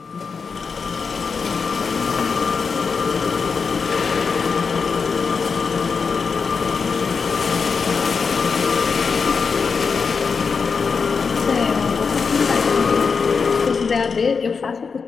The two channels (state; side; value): quieter; right; 5.3 dB